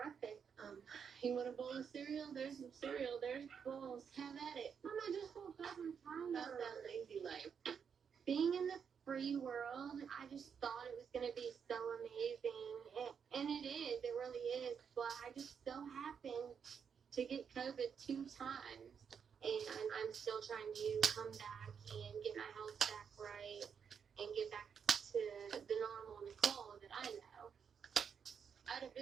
You want a bowl of cereal? There's some cereal. There's bowls. Have at it. Mom, I just woke up and tired. That's that lazy life. Being in the free world, I just thought it was going to be so amazing. And it is. It really is. But I just so happened to get COVID 2 times. And I'm still trying to come back and get my health back right and get back to the normal Nicole that I know. I had a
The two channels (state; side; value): quieter; left; 6.9 dB